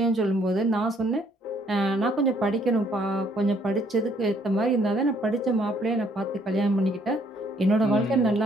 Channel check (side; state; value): both; normal; correlation 0.66